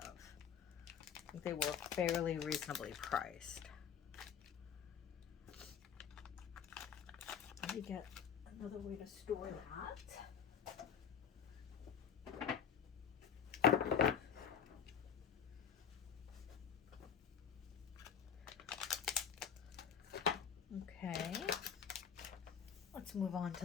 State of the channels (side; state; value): right; quieter; 7.8 dB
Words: I think they were fairly reasonably priced. Let me get another way to store that. Okay, let's move on to